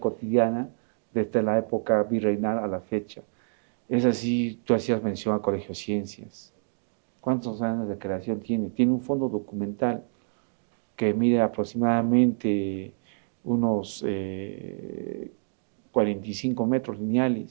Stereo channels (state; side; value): silent; left; digital silence